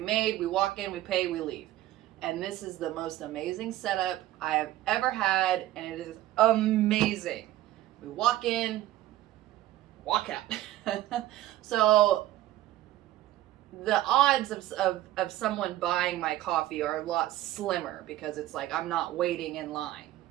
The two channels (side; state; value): left; quieter; 14.9 dB